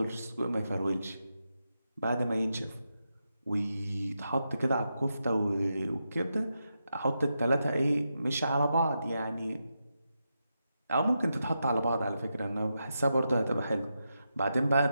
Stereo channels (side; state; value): both; inverted; correlation -0.86